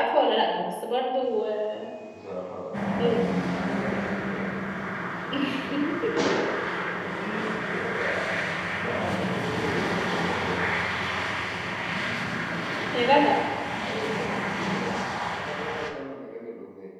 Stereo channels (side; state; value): both; identical; correlation 1.00